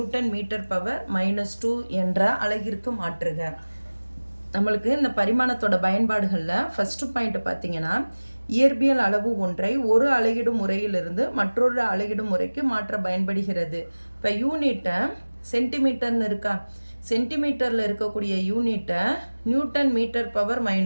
மீட்டர் பவர் -2 என்ற அலகிற்கு மாற்றுக. நம்மளுக்கு இந்த பரிமாணத்தோட பயன்பாடுகளில் ஃபஸ்ட்டு பாயிண்ட் பார்த்தீங்கன்னா, இயற்பியல் அளவு ஒன்றை ஒரு அலகிடும் முறையிலிருந்து மற்றொரு அலகிடும் முறைக்கு மாற்ற பயன்படுகிறது. இப்போ யூனிட்டை சென்டிமீட்டர்னு இருக்கா, சென்டிமீட்டரில் இருக்கக்கூடிய யூனிட்டை நியூட்டன் மீட்டர் பவர்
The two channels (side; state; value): both; inverted; correlation -1.00